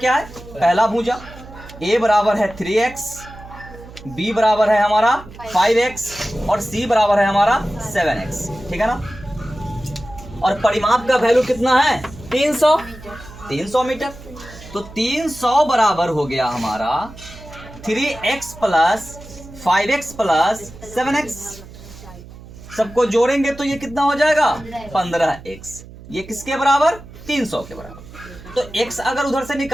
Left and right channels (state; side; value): noise; right; hum, 17 dB below the sound